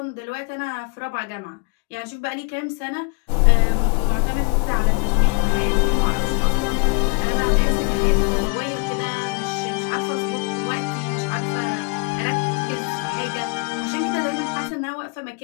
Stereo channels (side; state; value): right; quieter; 31.4 dB